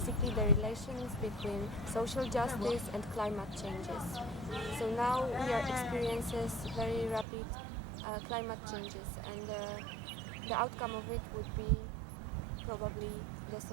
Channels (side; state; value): left; drops out; at 7.2 s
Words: the relations between social justice and climate changes. So now we are experiencing very rapid climate changes, and the outcome of it would be probably the